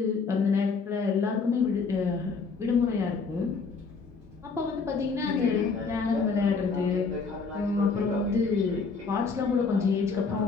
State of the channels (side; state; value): right; quieter; 4.7 dB